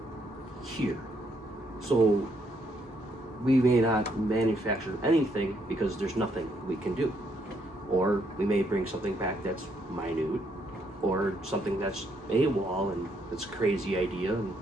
here. So we may not manufacture anything because there's nothing we can do. Or we may bring something back that's minute, or something that's AWOL and it's a crazy idea and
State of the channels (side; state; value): both; normal; correlation 0.73